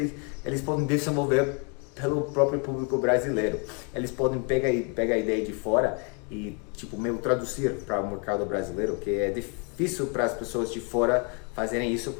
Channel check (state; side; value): quieter; right; 35.4 dB